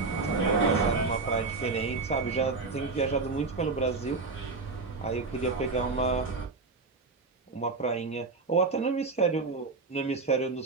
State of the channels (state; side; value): quieter; left; 4.0 dB